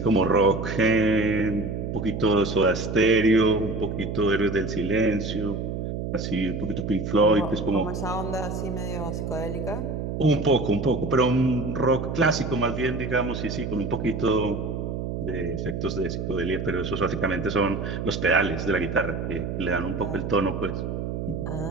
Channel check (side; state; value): right; noise; hum, 4 dB below the sound